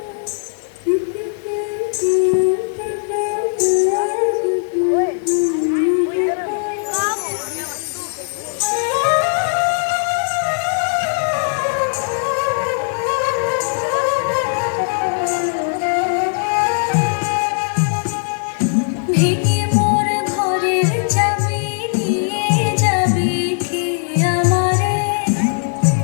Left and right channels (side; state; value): right; silent; digital silence